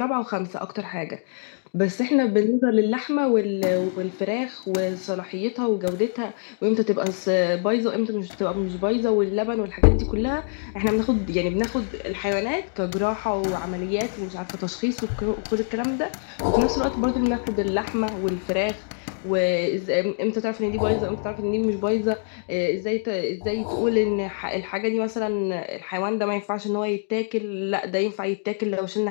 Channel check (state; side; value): silent; right; digital silence